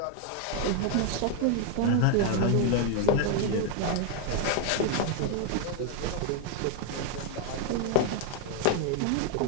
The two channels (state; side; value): different; both; correlation 0.01